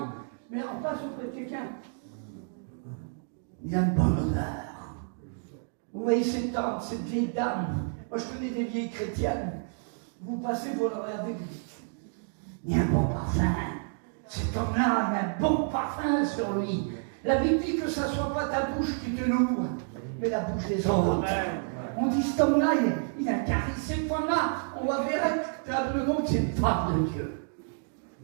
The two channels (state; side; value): silent; left; 58 dB below the other